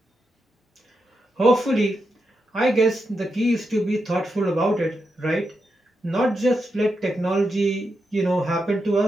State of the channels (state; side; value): normal; both; correlation 0.86